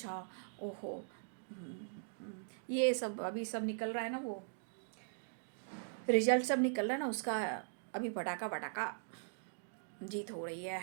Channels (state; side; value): silent; left; digital silence